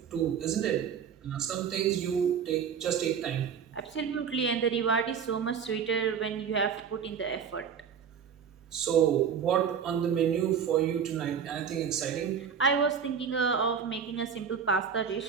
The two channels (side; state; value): left; quieter; 7.2 dB